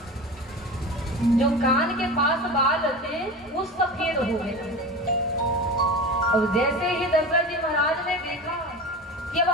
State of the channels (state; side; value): normal; both; correlation 0.30